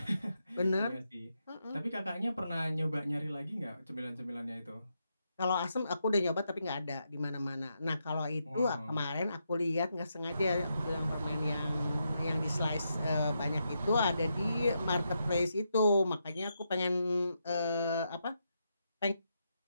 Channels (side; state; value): both; inverted; correlation -0.82